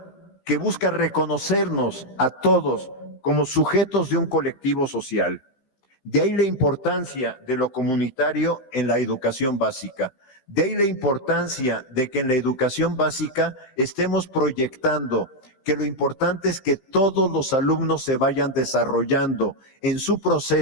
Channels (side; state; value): right; late; 15 ms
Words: que busca reconocernos a todos como sujetos de un colectivo social. De ahí la importancia de lo comunitario en la educación básica. De ahí la importancia de que en la educación básica estemos proyectando que lo importante es que todos los alumnos se vayan desarrollando en su